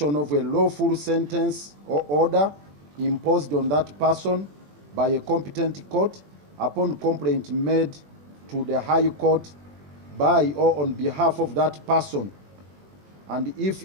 of a lawful sentence or order imposed on that person by a competent court upon complaint made to the High Court by or on behalf of that person, and if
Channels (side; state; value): left; late; 21 ms